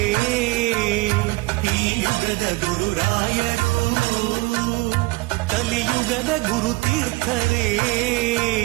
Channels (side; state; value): left; quieter; 23.5 dB